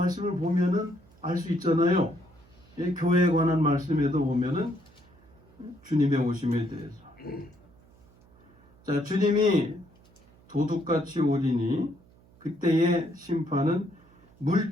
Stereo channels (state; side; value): noise; right; hum, 28 dB below the sound